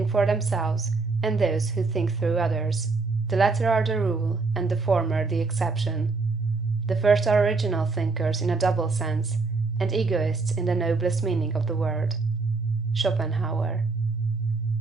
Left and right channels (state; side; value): quieter; left; 4.0 dB